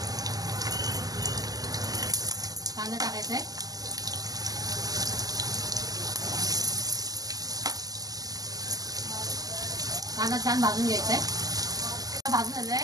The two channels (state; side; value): late; left; 0.18 ms